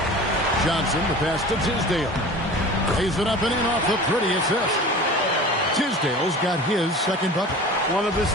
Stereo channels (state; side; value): normal; both; correlation 0.38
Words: Johnson, the pass to Tisdale. Lays it up and in off the pretty assist. Tisdale's got his 2nd bucket. One of his